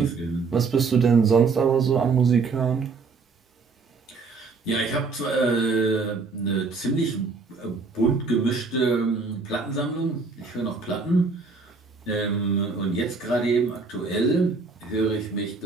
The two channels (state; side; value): quieter; left; 4.4 dB